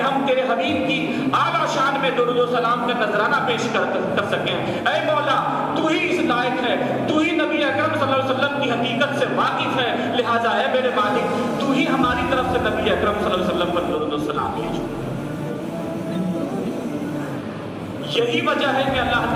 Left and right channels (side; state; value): both; identical; correlation 1.00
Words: ہم تیرے حبیب کی اعلیٰ شان میں درود و سلام کا نذرانہ پیش کر سکیں۔ اے مولا، تو ہی اس لائق ہے، تو ہی نبی اکرم صلی اللہ علیہ وسلم کی حقیقت سے واقف ہے، لہذا اے میرے مالک تو ہی ہماری طرف سے نبی اکرم صلی اللہ علیہ وسلم پر درود و سلام بھیجو۔ یہی وجہ ہے کہ اللہ